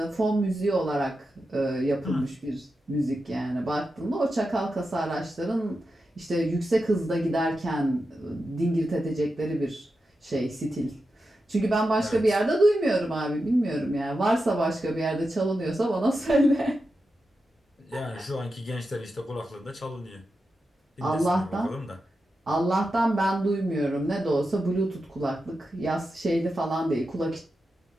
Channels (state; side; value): normal; both; correlation 0.89